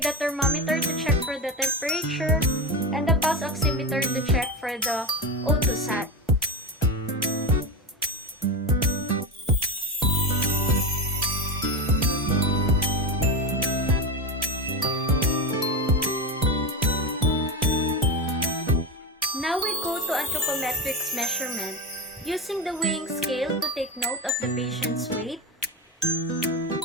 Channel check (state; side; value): normal; both; correlation 0.19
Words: the thermometer to check for the temperature and the pulse oximeter to check for the Otosat. Now we go to anthropometrics measurement, using the weighing scale to take note of the patient's weight,